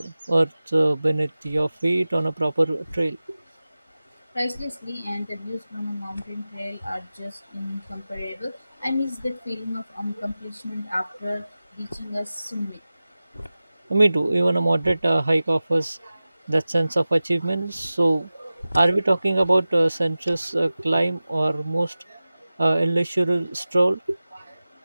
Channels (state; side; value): inverted; both; correlation -0.96